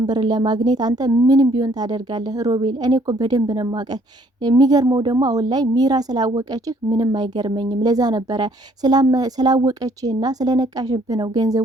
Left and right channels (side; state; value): both; normal; correlation 0.63